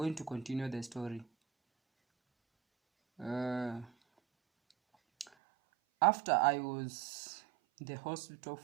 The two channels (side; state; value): left; drops out; at 5.3 s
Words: to continue the story. After I was in the hospital